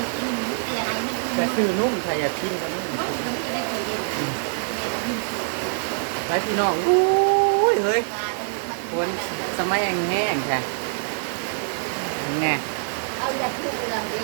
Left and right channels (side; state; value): left; silent; digital silence